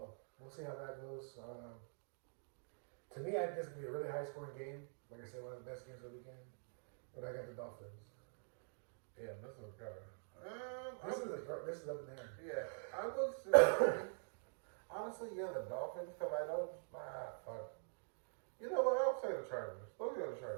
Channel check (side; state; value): left; silent; digital silence